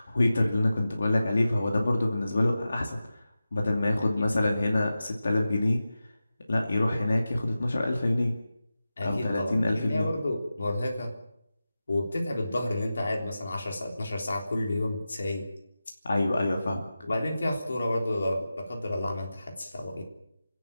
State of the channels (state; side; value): inverted; both; correlation -0.93